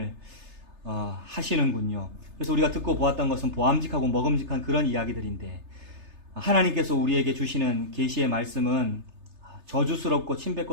하시는군요. 그래서 우리가 듣고 보았던 것은 보암직하고 먹음직한 그런 이야기들인데 하나님께서 우리에게 주시는 계시의 말씀은 저주스럽고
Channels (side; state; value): left; late; 3.3 ms